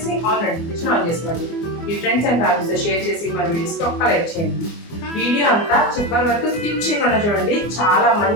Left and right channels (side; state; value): right; late; 24 ms